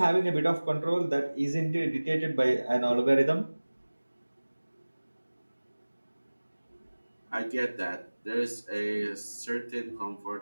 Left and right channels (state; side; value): inverted; both; correlation -1.00